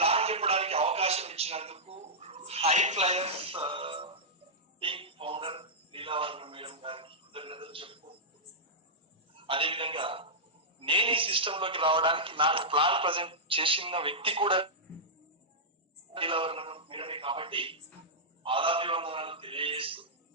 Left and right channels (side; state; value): both; normal; correlation -0.11